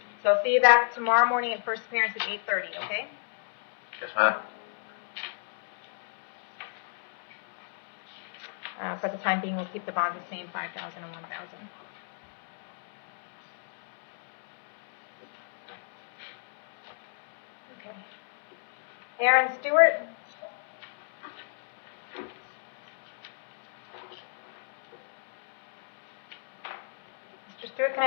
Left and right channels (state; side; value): silent; right; 57 dB below the other